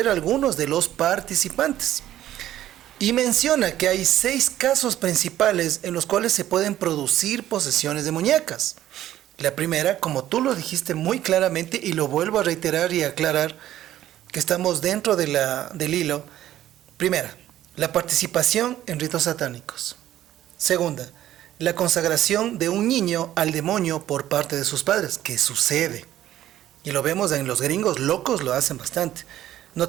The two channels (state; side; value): quieter; left; 12.8 dB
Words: a algunos de los participantes. Y menciona que hay 6 casos principales en los cuales se pueden producir posesiones demoníacas. La primera, como tú lo dijiste muy claramente, y lo vuelvo a reiterar y aclarar, que estamos dentro de del hilo. Primera, la participación en ritos satánicos. Segunda, la consagración de un niño al demonio por parte de sus padres, que sucede. Y lo vemos en los gringos, locos lo hacen bastante.